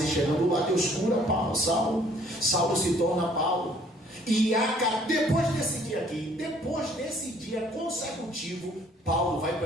chegando lá, Deus cura Saulo se torna Paulo. E depois desse dia aqui, depois desse dia consecutivo, Paulo vai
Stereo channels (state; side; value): normal; both; correlation 0.59